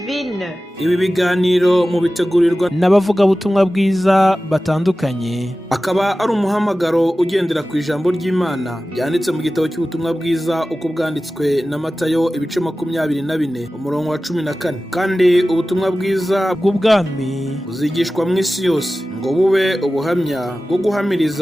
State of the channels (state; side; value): normal; both; correlation 0.95